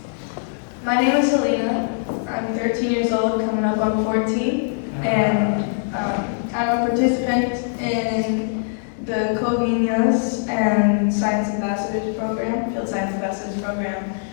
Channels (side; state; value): right; silent; 64 dB below the other